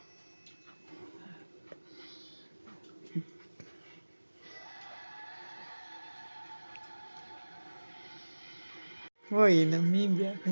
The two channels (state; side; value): inverted; both; correlation -1.00